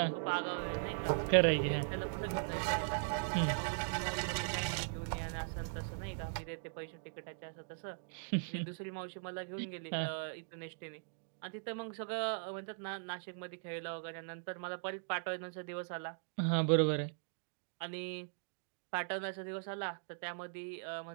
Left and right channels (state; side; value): silent; left; digital silence